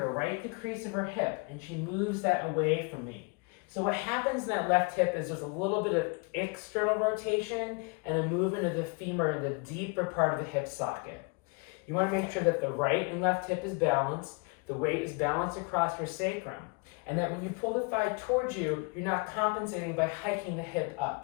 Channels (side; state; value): right; quieter; 30.4 dB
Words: right at the crease of her hip, and she moves that away from me. So what happens in that left hip is there's a little bit of external rotation and a movement of the femur in the deeper part of the hip socket. You want to make sure that the right and left hip is balanced, the weight is balanced across your sacrum, and that when you pull the thigh towards you, you're not compensating by hiking the hip